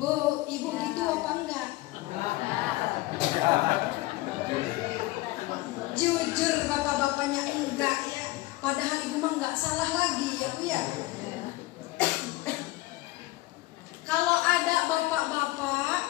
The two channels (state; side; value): quieter; right; 19.2 dB